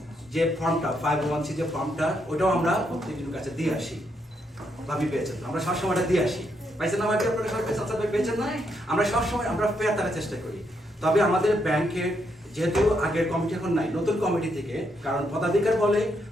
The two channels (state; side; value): normal; both; correlation 0.78